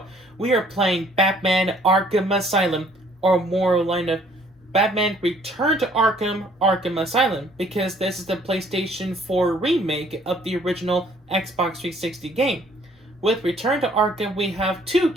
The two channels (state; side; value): normal; both; correlation 0.60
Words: We are playing Batman Arkham Asylum, or more line of Batman Return to Arkham Asylum, because this is the PlayStation 4 remake of the original Xbox 360 game. With Return to Arkham, we have two